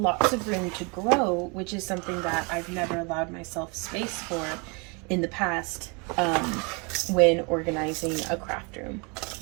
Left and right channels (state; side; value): quieter; left; 31.6 dB